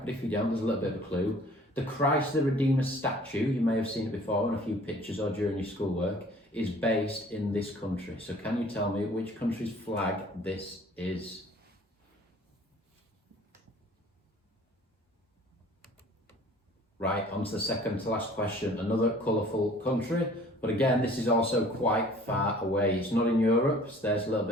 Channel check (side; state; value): both; normal; correlation 0.51